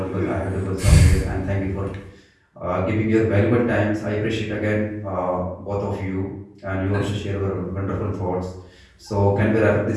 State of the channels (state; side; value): identical; both; correlation 1.00